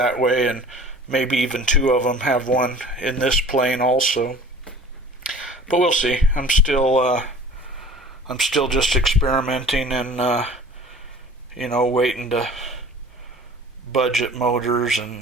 way, and maybe even two of them, have one in this plane also. But we'll see. I'm still just experimenting and waiting to budget motors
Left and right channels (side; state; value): both; normal; correlation 0.44